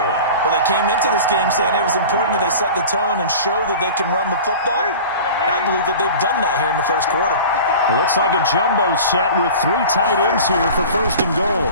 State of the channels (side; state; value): both; inverted; correlation -0.37